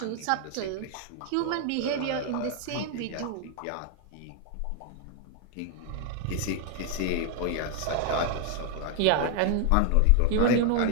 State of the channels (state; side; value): different; both; correlation 0.01